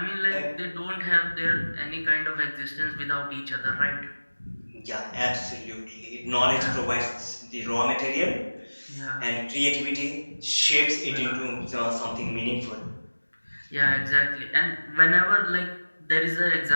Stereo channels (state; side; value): inverted; both; correlation -1.00